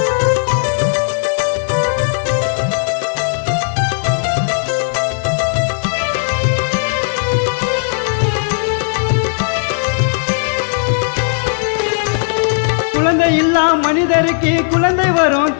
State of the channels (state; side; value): silent; right; digital silence